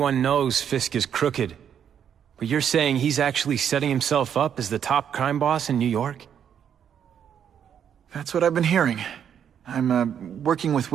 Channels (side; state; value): left; quieter; 8.6 dB